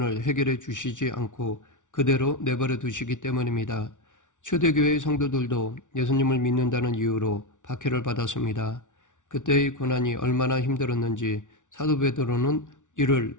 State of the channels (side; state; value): right; late; 0.87 ms